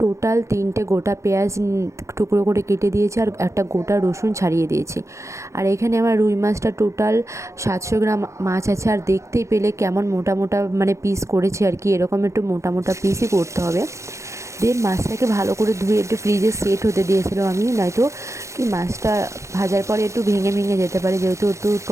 টোটাল 3টে গোটা পেঁয়াজ টুকরো করে কেটে দিয়েছি, আর একটা গোটা রসুন ছাড়িয়ে দিয়েছি। আর এখানে আমার রুই মাছটা টোটাল 700 গ্রাম মাছ আছে। আর দেখতেই পেলে কেমন মোটা মোটা মানে পিস করেছি আর কি, এরকম একটু মোটা মোটা পিসই করতে হবে। দেন মাছটাকে ভালো করে ধুয়ে একটু ফ্রিজে সেট হতে দিয়েছিলাম আমি, নয়তো কি মাছটা ভাজার পরে একটু ভেঙে ভেঙে যেতে পারে, যেহেতু একটু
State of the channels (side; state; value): left; late; 0.14 ms